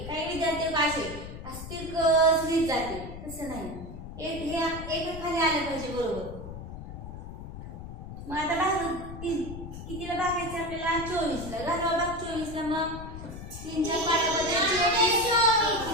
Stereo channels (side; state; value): left; noise; rumble, 10 dB below the sound